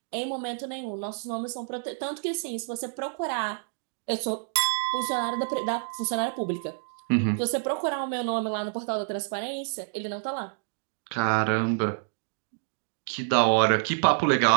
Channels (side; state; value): left; silent; digital silence